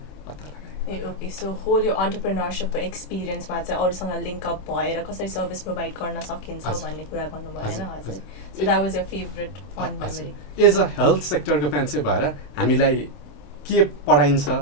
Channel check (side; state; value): right; late; 27 ms